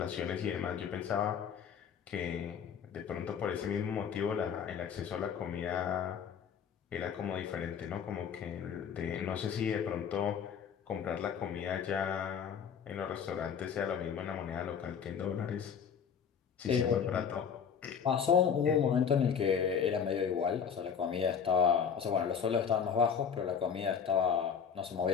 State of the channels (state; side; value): quieter; right; 7.3 dB